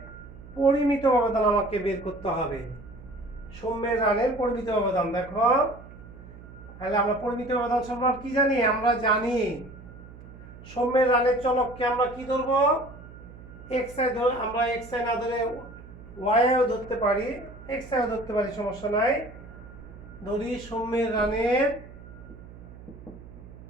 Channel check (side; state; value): right; noise; hum, 17 dB below the sound